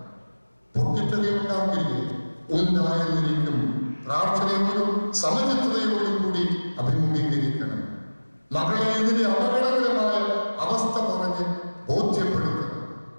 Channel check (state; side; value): inverted; both; correlation -1.00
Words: പൊട്ടിത്തെറി ഉണ്ടാകില്ലേ? ഉണ്ടായെന്നിരിക്കും. പ്രാർത്ഥനയോടും സമചിത്തതയോടും കൂടി അഭിമുഖീകരിക്കണം. മകളെ ഇതിന്റെ അപകടകരമായ അവസ്ഥ പറഞ്ഞ് ബോധ്യപ്പെടുത്തണം.